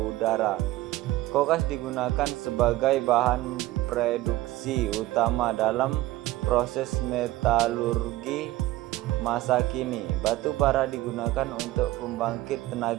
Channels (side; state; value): left; quieter; 17.1 dB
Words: Kokas digunakan sebagai bahan produksi utama dalam proses metalurgi masa kini. Batu bara digunakan untuk pembangkit